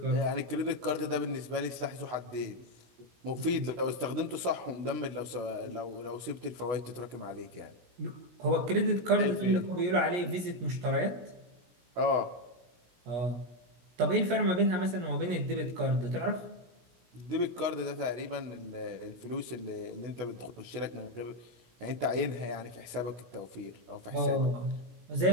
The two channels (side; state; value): left; late; 16 ms